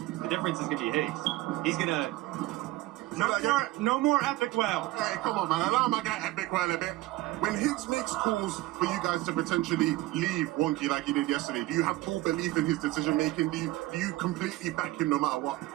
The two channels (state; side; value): quieter; left; 18.3 dB